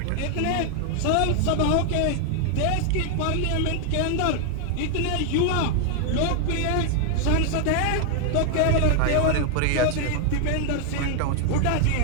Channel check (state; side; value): different; both; correlation 0.00